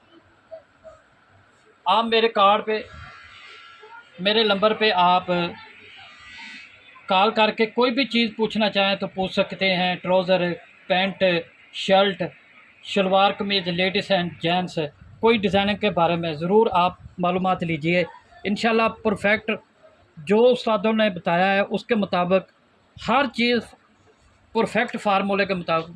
आप मेरे कार्ड पे, मेरे नंबर पे आप कॉल करके कोई भी चीज़ पूछना चाहें तो पूछ सकते हैं। Trouser, pant, shirt, salwar kameez, ladies and gents, कोई डिज़ाइनिंग के बारे में ज़रूर आप मालूमात लीजिए। इंशाल्लाह परफेक्ट जो उस्तादों ने बताया है उसके मुताबिक हर चीज़ परफेक्ट फार्मूले के मुताबिक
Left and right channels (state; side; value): identical; both; correlation 1.00